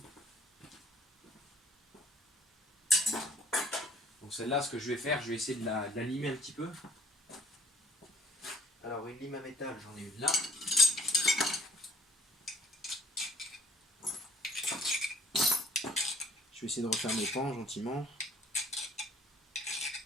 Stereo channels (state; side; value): normal; both; correlation 0.57